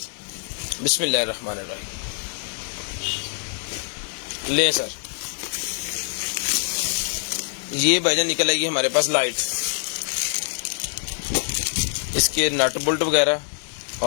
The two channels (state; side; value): silent; right; digital silence